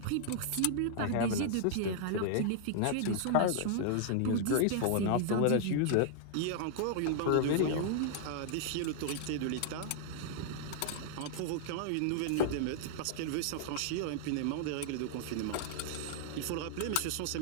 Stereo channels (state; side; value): different; both; correlation -0.01